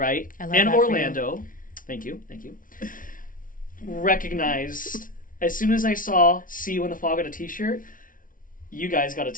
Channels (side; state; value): right; late; 0.39 ms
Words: In Orlando. Thank you. Recognized, as soon as I saw "See You in the Fog" on a t-shirt, you guys got a